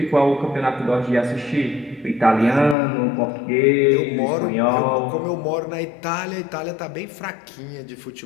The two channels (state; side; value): drops out; right; at 2.8 s